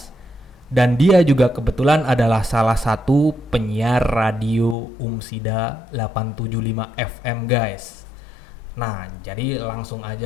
dan dia juga kebetulan adalah salah satu penyiar radio Umsida 875 FM guys. Nah, jadi langsung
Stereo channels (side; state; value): right; drops out; at 4.8 s